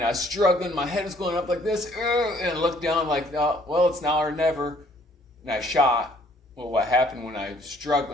I was struggling. My head was going up like this, and I looked down like, oh, well, it's now or never. And I shot. Well, what happened when I was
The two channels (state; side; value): normal; both; correlation 0.62